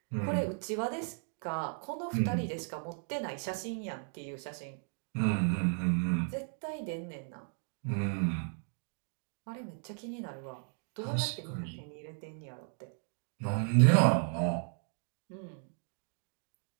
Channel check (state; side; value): silent; left; 54 dB below the other